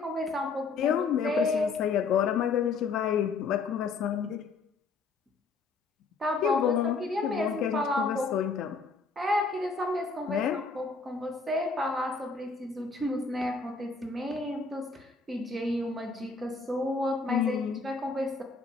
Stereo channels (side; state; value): right; quieter; 4.3 dB